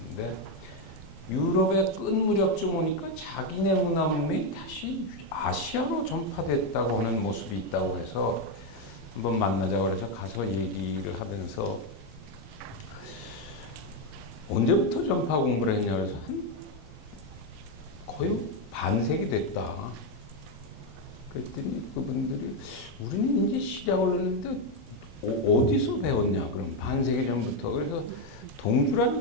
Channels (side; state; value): both; normal; correlation 0.05